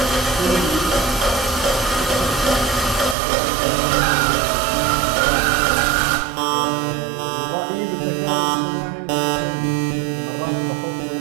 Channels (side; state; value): left; drops out; at 3.2 s